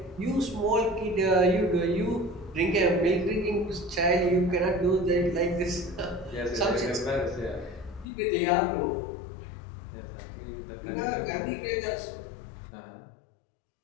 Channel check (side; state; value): right; drops out; at 8.1 s